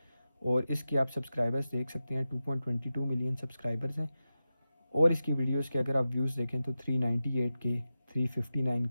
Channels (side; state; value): both; inverted; correlation -0.92